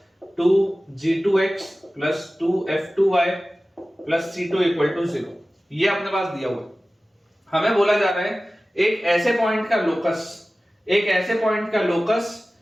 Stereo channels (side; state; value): both; normal; correlation 0.96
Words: 2g2x plus 2f2y plus c2 equal to 0. ये अपने पास दिया हुआ है. हमें बोला जा रहा है एक ऐसे पॉइंट का लोकस, एक ऐसे पॉइंट का लोकस